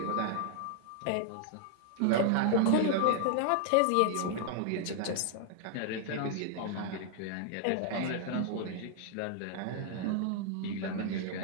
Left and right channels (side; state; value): both; different; correlation -0.01